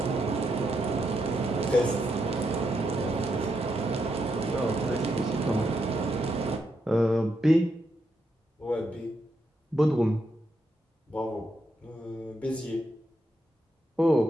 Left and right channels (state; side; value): normal; both; correlation 0.81